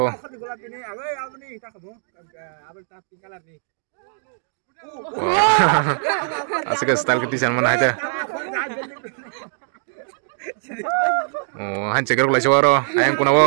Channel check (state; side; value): silent; left; digital silence